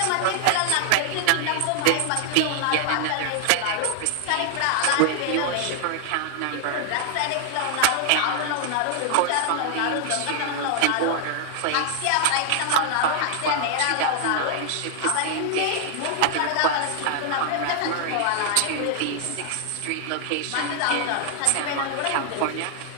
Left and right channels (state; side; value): different; both; correlation 0.00